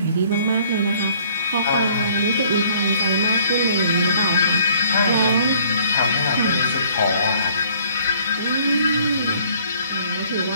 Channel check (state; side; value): inverted; both; correlation -0.59